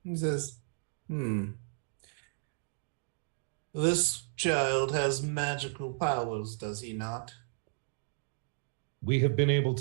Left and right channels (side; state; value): left; silent; digital silence